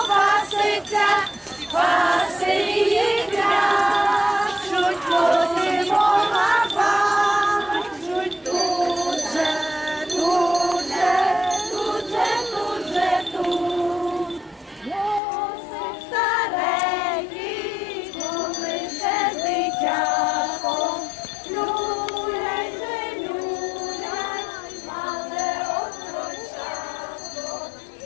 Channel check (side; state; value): right; drops out; at 15.2 s